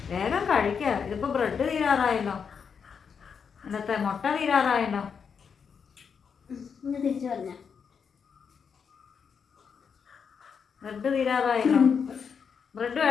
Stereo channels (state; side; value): quieter; right; 6.5 dB